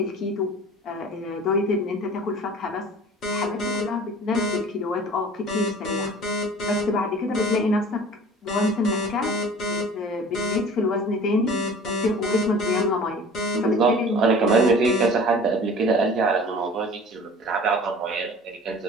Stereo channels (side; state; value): both; normal; correlation 0.44